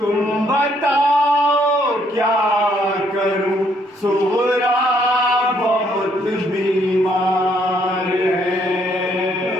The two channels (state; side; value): normal; both; correlation 0.69